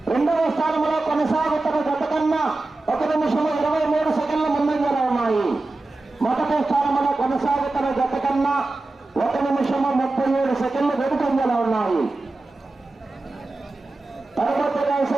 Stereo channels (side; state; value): left; quieter; 3.1 dB